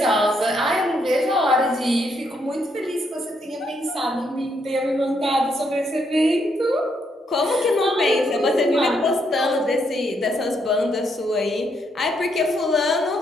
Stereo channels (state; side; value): normal; both; correlation 0.75